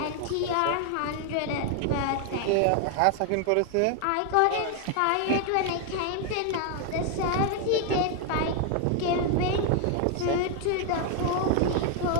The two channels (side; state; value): both; different; correlation 0.00